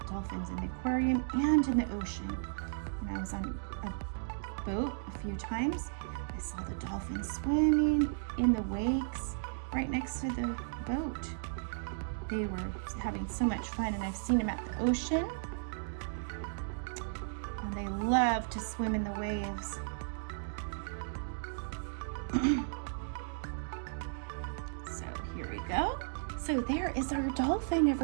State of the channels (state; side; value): silent; left; digital silence